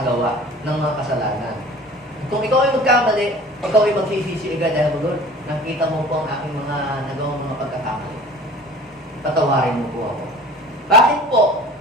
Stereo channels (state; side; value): normal; both; correlation 0.44